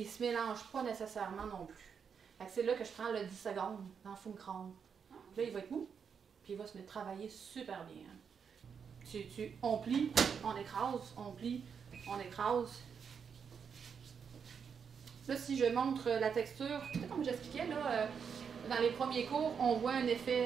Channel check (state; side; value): quieter; left; 6.7 dB